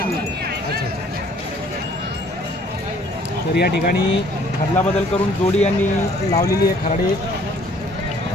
अच्छा. तर या ठिकाणी खरला बदल करून जोडी यांनी लावलेली आहे. खराडे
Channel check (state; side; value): normal; both; correlation 0.58